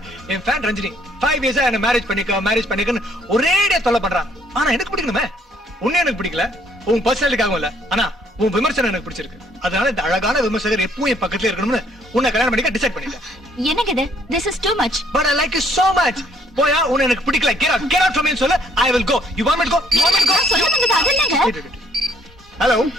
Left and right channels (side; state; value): both; normal; correlation 0.65